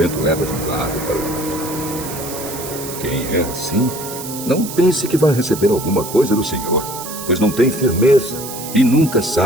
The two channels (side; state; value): right; noise; hiss, 10 dB below the sound